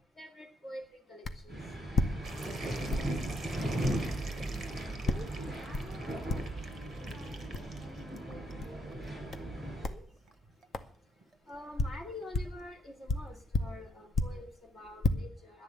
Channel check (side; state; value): both; normal; correlation 0.74